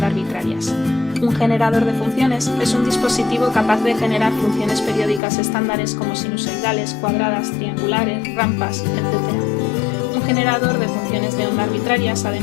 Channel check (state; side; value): drops out; right; at 5.2 s